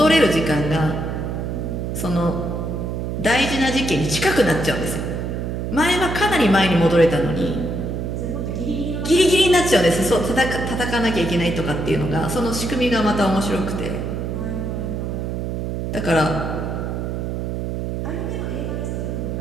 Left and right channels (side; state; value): right; noise; hum, 3 dB below the sound